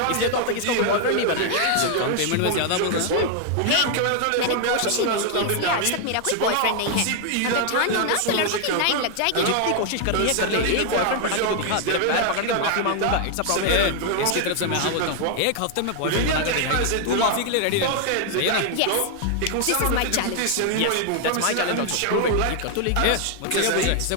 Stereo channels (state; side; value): different; both; correlation 0.00